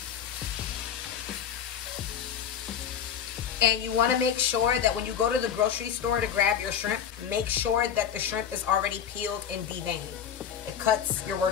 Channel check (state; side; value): quieter; right; 8.4 dB